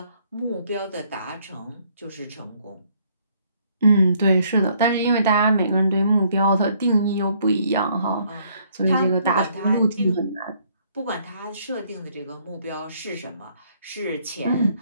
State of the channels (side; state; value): both; inverted; correlation -0.66